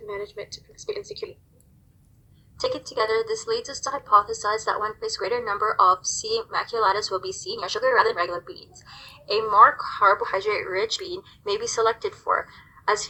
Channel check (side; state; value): both; identical; correlation 1.00